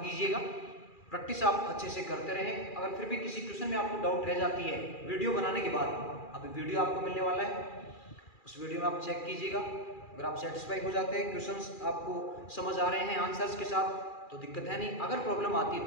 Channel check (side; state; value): right; late; 2.4 ms